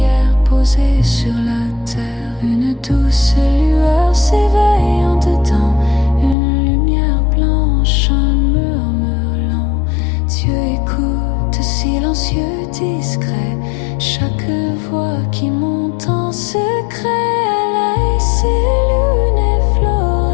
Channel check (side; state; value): right; drops out; at 6.4 s